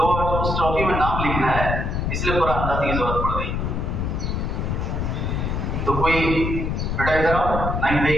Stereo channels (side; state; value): left; noise; rumble, 1 dB below the sound